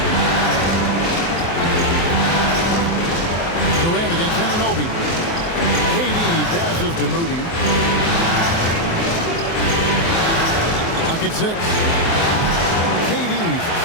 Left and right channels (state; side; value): late; right; 24 ms